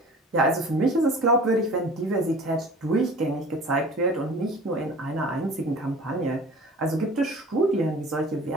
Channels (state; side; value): normal; both; correlation 0.43